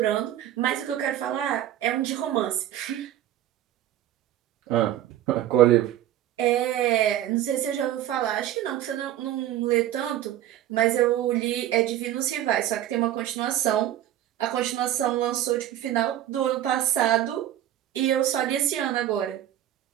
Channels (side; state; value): left; quieter; 12.5 dB